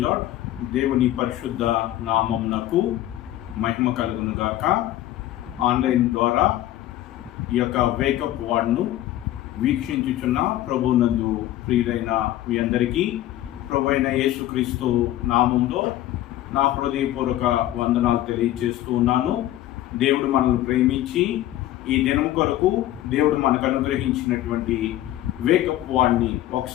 lord. దేవుని పరిశుద్ధ నామమునకు మహిమ కలుగును గాక. ఆన్లైన్ ద్వారా ఈ యొక్క వేకప్ వార్డ్ను వీక్షించుచున్న ప్రభునందు ప్రియులైన మీ అందరికీ ప్రభు అయిన యేసుక్రీస్తు నామంలో నా హృదయపూర్వక వందనాలు తెలియజేస్తూ ఉన్నాను. దేవుడు మనల్ని ప్రేమించి ఈ దినం కొరకు దేవుడు మనకు అనుగ్రహించినటువంటి వేకప్ వార్డ్ని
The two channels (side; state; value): right; quieter; 14.0 dB